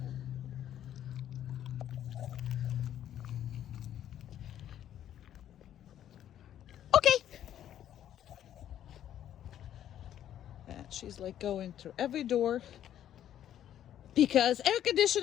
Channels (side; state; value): right; quieter; 10.9 dB